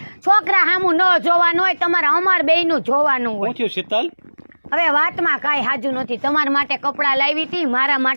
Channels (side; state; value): both; inverted; correlation -1.00